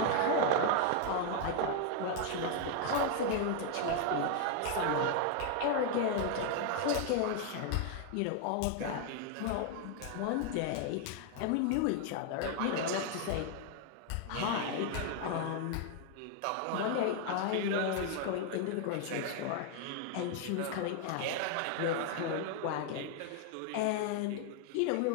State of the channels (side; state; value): both; different; correlation 0.00